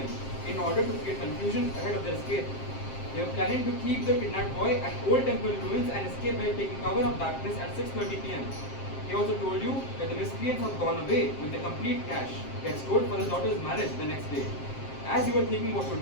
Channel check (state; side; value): late; right; 7.5 ms